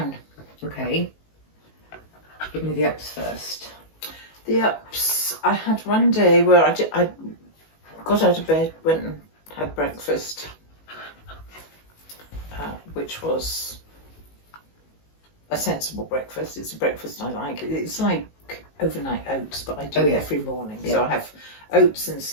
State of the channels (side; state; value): right; late; 19 ms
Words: Okay. Give me the ups first. The ups. I had one day where I got out of bed, went and had breakfast, which was a sensible breakfast. It's a breakfast I like. It's like overnight oats, but I do it every morning. Yeah. So I have oats and